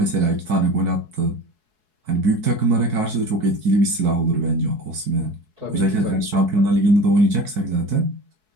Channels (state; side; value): late; left; 4.7 ms